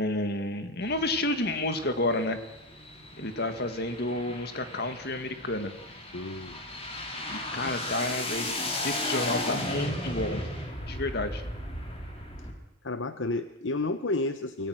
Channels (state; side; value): normal; both; correlation 0.12